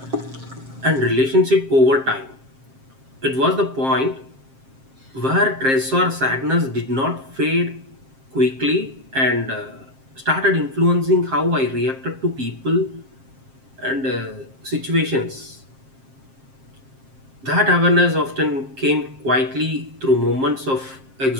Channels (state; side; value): late; left; 7.5 ms